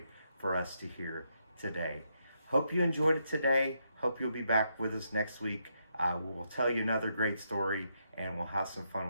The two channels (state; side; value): inverted; both; correlation -0.79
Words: for us to hear today. Hope you enjoyed it today. Hope you'll be back with us next week. We'll tell you another great story, and we'll have some fun